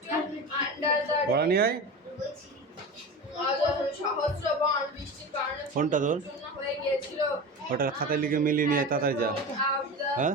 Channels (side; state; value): both; normal; correlation 0.28